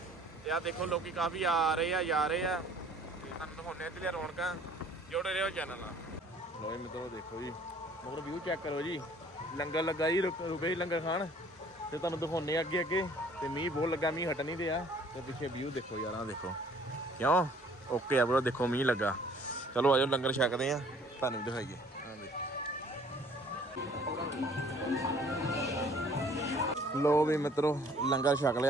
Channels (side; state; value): both; normal; correlation 0.56